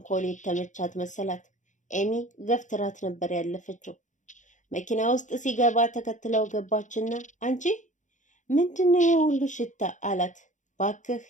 የተመቻት መሰላት። ኤሚ ገፍትራት ነበር ያለፈችው። መኪና ውስጥ ሲገባ ተከትለው ገባችና አንቺ ምንድነው የሁሉ ሽታ አላት። ባክህ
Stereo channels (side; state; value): right; late; 0.36 ms